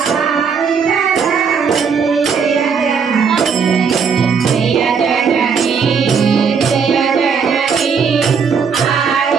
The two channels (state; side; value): quieter; left; 6.1 dB